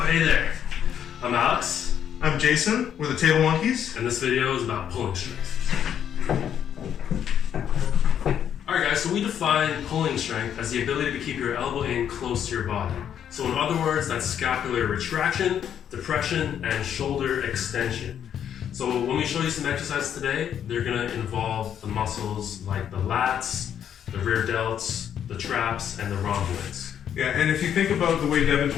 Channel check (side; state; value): right; quieter; 9.2 dB